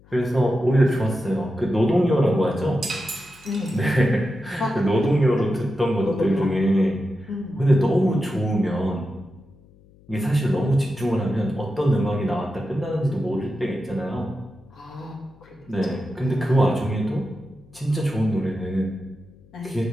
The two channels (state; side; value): noise; left; hum, 27 dB below the sound